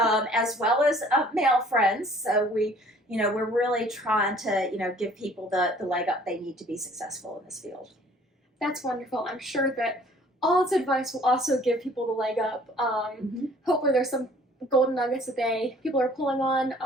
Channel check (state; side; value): normal; both; correlation 0.55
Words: as well as male friends. So we're really trying to, give people the leg up they need to be successful in this field. That's wonderful. I'm sure that all its advice will also give people the leg up. Hopefully there's some golden nuggets that people are pulling on.